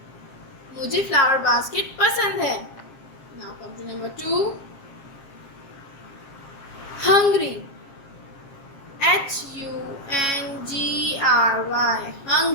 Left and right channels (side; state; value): right; late; 7.5 ms